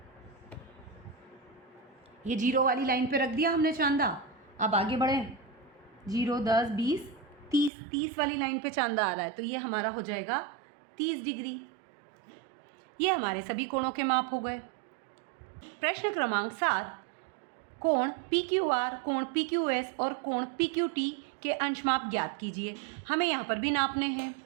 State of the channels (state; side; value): drops out; left; at 7.7 s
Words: ये 0 वाली लाइन पे रख दिया हमने चांदा। अब आगे बढ़ें, 0, 10, 20, 30 वाली लाइन पे चांदा आ रहा है, तो ये हमारा हो जाएगा 30 डिग्री। ये हमारे सभी कोणों के माप हो गए। प्रश्न क्रमांक 7, कोण PQR, कोण PQS और कोण PQT के अंश माप ज्ञात कीजिए। हमें यहाँ पर भी नापने हैं।